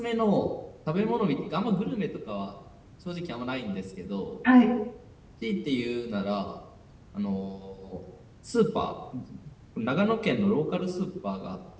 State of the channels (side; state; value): both; identical; correlation 1.00